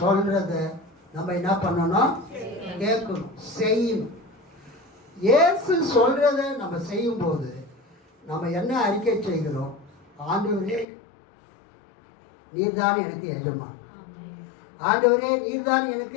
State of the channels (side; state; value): right; drops out; at 10.9 s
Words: நம்ம என்ன பண்ணணும்? கேட்கணும், செய்யணும். இயேசு சொல்றத நம்ம செய்யும் போது நம்ம என்ன அறிக்கை செய்கிறோம்? ஆண்டவரே, நீர்தான் எனக்கு எஜமான். ஆண்டவரே, நீர்தான்